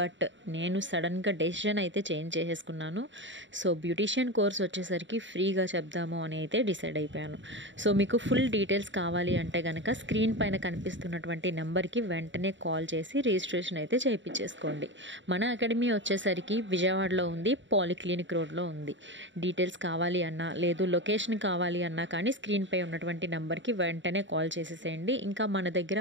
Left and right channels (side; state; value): left; late; 0.54 ms